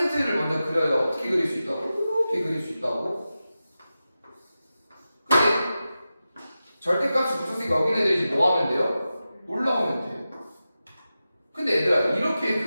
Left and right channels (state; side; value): inverted; both; correlation -0.93